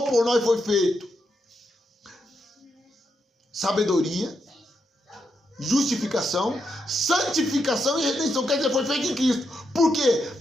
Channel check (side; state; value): both; normal; correlation 0.82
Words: por nós foi feito sabedoria, justificação, santificação e redenção. Quer dizer, foi feito em Cristo. Por quê?